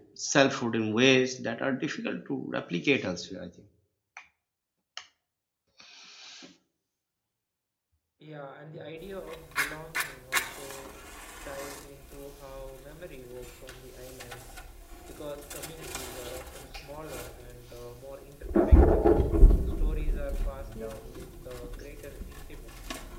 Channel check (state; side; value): identical; both; correlation 1.00